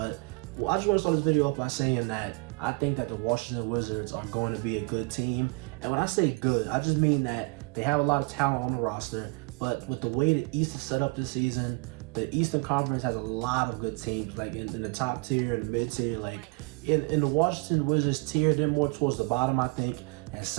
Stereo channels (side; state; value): left; quieter; 30.7 dB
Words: I just want to start this video off by saying that I think that the Washington Wizards are going to be a good team. And when I say good, I just mean that they have a lot of talent on the roster. But with the way the East is set up this season, the Eastern Conference has a lot of good teams, like in the top tier and the mid tier. Like in the Washington Wizards tier, they're more towards the bottom, I think. And